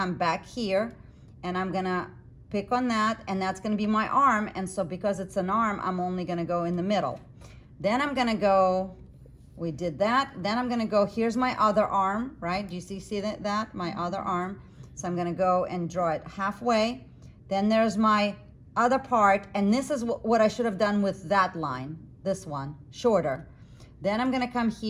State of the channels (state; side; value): identical; both; correlation 1.00